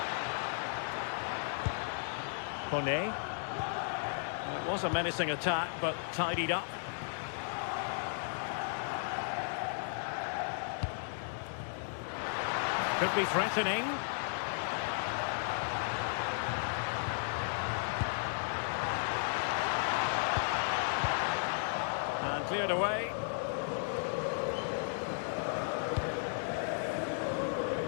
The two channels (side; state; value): right; silent; digital silence